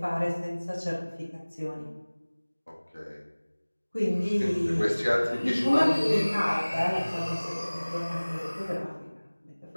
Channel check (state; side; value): inverted; both; correlation -1.00